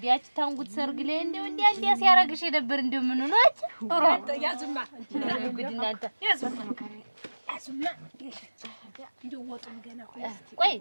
ያቺ ታንጉት ሰርግ ላይ እንደው እንዲያ ሲያረግሽ የነበር እንደው ምን ነው አቺ ያዝማ ጉድ እናንተ ያዝማ እንደው ወጡን ገና ቆይ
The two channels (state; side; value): inverted; both; correlation -1.00